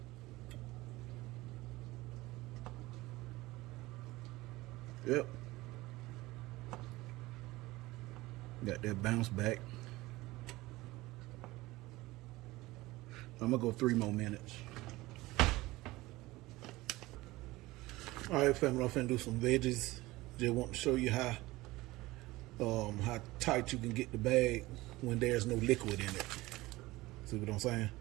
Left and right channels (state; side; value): quieter; left; 19.5 dB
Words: Yep. Got that bounce back. I'm gonna go 3 more minutes. All right, family, I'm finna do some veggies. Just want to show you how tight you can get the bag when there's no liquid in it. See what I'm saying?